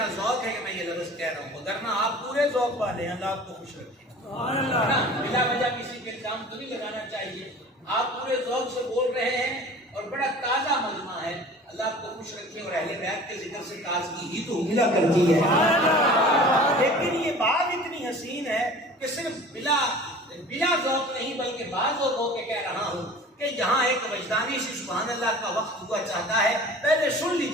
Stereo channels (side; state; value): both; normal; correlation 0.43